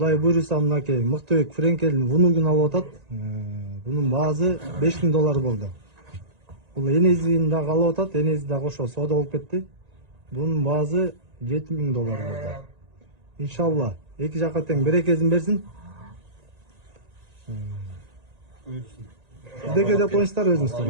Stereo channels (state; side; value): late; left; 1.9 ms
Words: буйруса мынакей мыктыбек Френкелдин вунугун алып атат. Бунун баасы $5000 болду. Бул энезин дагы алып атат, энези да кошо соода болуп кетти. Бунун баасы $7000 болду. Иншалла, эки жака тең берекесин берсин. Бизге деп коюңуздар өзүңүздөр.